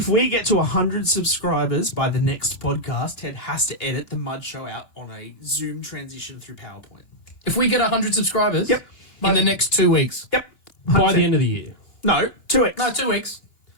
we get to 100 subscribers by the next podcast, Ted has to edit the Mud Show out on a Zoom transition through PowerPoint. If we get 100 subscribers Yep. in the next 2 weeks. Yep. By the end of the year. No, 2x. No, 2 weeks.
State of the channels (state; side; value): late; right; 2.9 ms